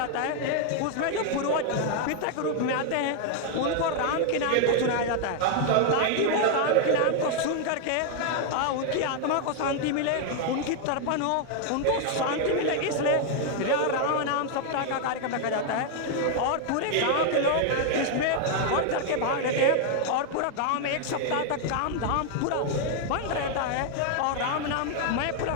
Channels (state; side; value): different; both; correlation 0.00